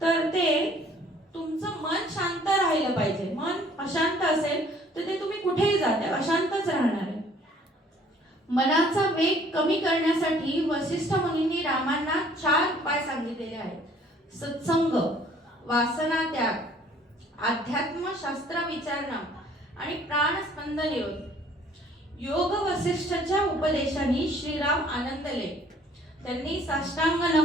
तर ते तुमचं मन शांत राहिलं पाहिजे. मन अशांत असेल तर ते तुम्ही कुठेही जाते अशांतच राहणार आहे. मनाचा वेग कमी करण्यासाठी वसिष्ठ मुनींनी रामांना 4 उपाय सांगितलेले आहेत. सत्संग, वासना त्याग, अध्यात्म शास्त्र विचारणा आणि प्राणस्पंद निरोध. योग वसिष्ठच्या उपदेशाने श्रीराम आनंदले. त्यांनी साष्टांग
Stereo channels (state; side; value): normal; both; correlation 0.57